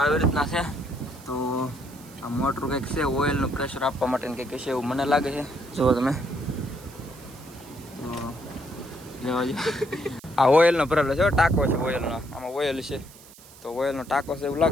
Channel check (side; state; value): right; noise; hiss, 21 dB below the sound